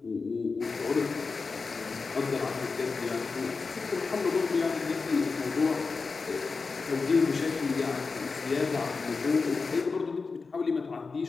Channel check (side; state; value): right; quieter; 4.5 dB